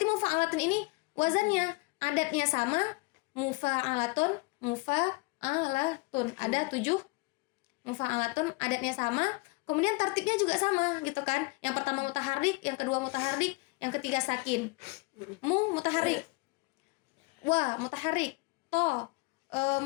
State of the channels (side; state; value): right; quieter; 26.7 dB